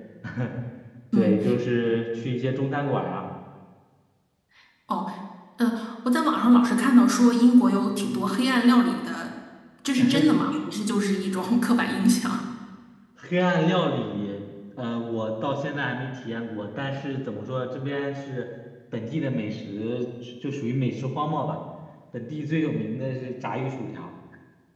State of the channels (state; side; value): identical; both; correlation 1.00